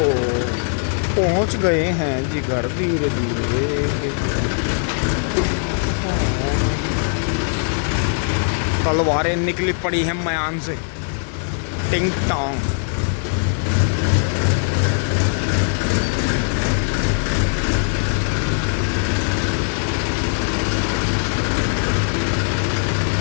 पहुंच गए हैं जी घर धीरे धीरे। तलवारें निकली पड़ी हैं मयान से। टिंग टोंग।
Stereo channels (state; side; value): silent; right; 59 dB below the other